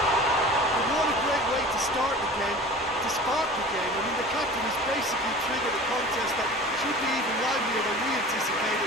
And what a great way to start the game, to spark the game. I mean, the captain has basically triggered a contest that should be even livelier than we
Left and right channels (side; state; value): both; normal; correlation 0.39